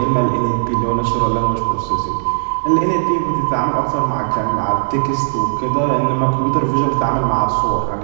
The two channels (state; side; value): silent; left; digital silence